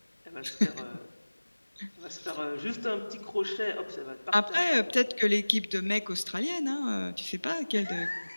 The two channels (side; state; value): both; inverted; correlation -1.00